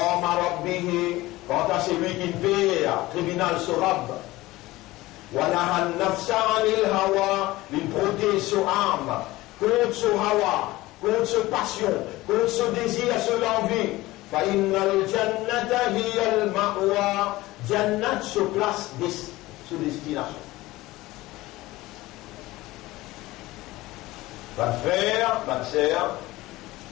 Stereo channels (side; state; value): right; quieter; 18.7 dB